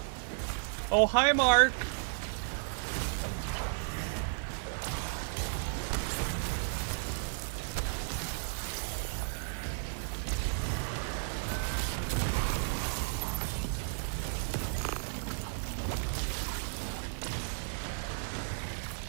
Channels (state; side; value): silent; left; digital silence